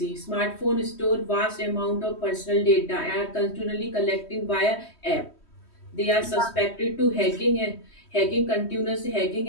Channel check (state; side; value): late; right; 3.1 ms